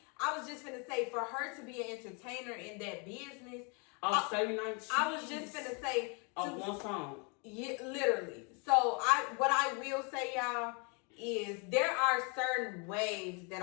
I was just finna say, for her to be an entertainer in that business. I was just finna say. One song. Yeah, literally. So what I will say, y'all, is there are certain waves that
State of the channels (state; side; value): quieter; right; 34.1 dB